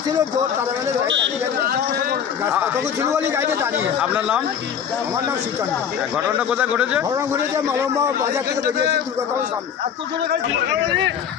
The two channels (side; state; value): right; quieter; 8.2 dB